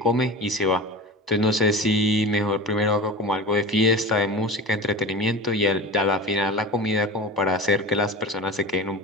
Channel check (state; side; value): normal; both; correlation 0.31